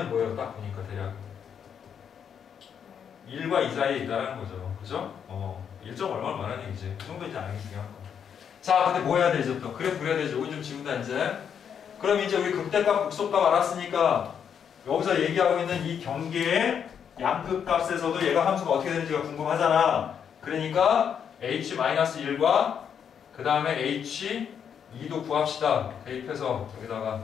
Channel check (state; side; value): quieter; right; 7.8 dB